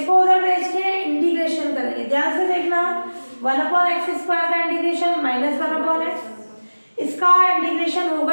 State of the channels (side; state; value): both; inverted; correlation -1.00